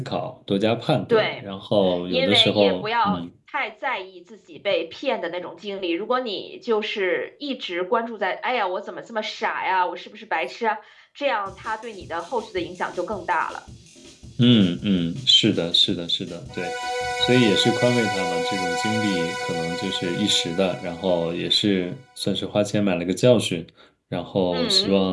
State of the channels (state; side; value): identical; both; correlation 1.00